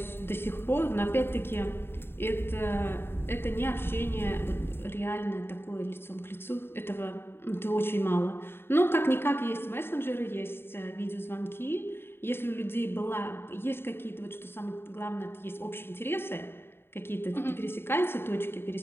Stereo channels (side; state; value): right; late; 0.11 ms